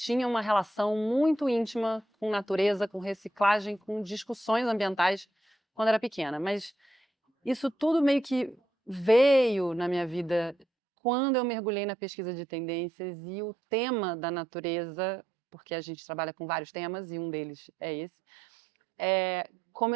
uma relação muito íntima com natureza, com reciclagem, com discussões ambientais quando era pequena. Mas isso tudo meio que veio na minha vida quando eu mergulhei na pesquisa de tendências e o tema da natureza, porque a gente trabalha com vários temas e um deles é esse,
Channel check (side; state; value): left; drops out; at 10.7 s